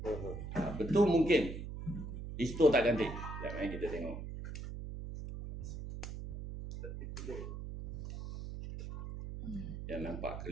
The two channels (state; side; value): noise; right; hum, 7 dB below the sound